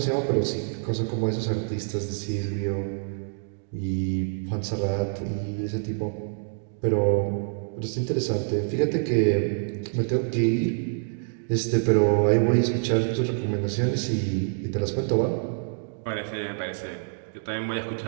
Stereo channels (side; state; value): left; silent; digital silence